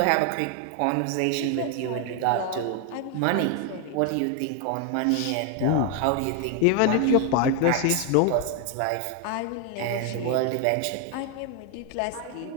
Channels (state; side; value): different; both; correlation 0.01